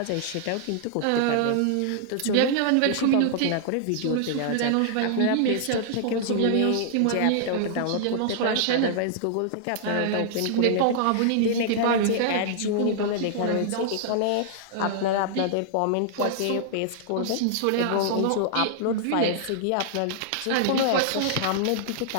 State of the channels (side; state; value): both; different; correlation -0.01